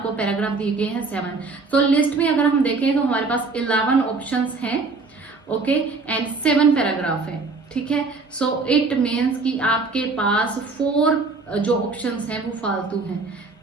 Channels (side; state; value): left; quieter; 4.0 dB